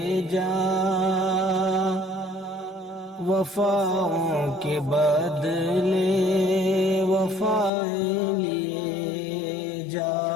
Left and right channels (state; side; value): drops out; right; at 7.7 s